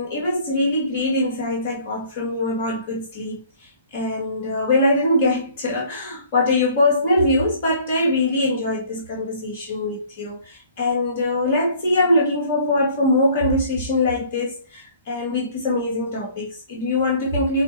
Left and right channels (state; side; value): inverted; both; correlation -0.54